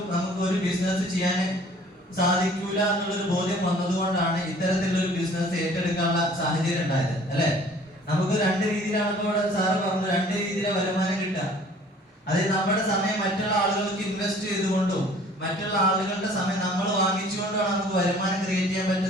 നമുക്ക് ഒരു ബിസിനസ് ചെയ്യാൻ സാധിക്കൂല എന്നുള്ളൊരു ബോധ്യം വന്നതുകൊണ്ടാണ് ഇത്തരത്തിലുള്ള ഒരു ബിസിനസ് ഏറ്റെടുക്കാനുള്ള സാഹചര്യം ഉണ്ടായത്, അല്ലെ? നമുക്ക് രണ്ട് രീതിയിലാണ് ഇപ്പോൾ സാറ് പറഞ്ഞു, രണ്ട് രീതിയിലെ വരുമാനം കിട്ടുക. അതായത് നമ്മുടെ സമയം മറ്റുള്ള ആളുകൾക്ക് ഇൻവെസ്റ്റ് ചെയ്തുകൊണ്ടും മറ്റുള്ള ആളുകളുടെ സമയം നമ്മൾ വാങ്ങിച്ചുകൊണ്ടാണ് നമുക്ക് വരുമാനം ക്രിയേറ്റ് ചെയ്യാൻ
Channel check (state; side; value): normal; both; correlation 0.52